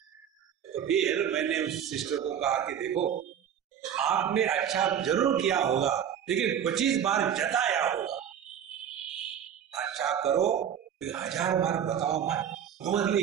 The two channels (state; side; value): quieter; left; 9.0 dB